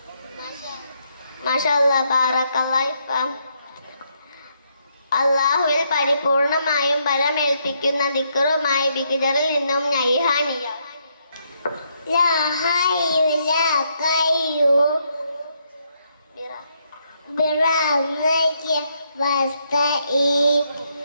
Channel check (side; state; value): both; inverted; correlation -0.75